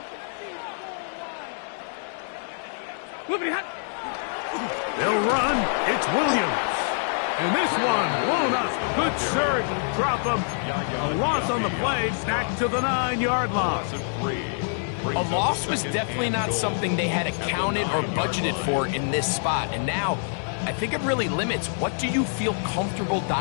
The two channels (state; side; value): silent; right; digital silence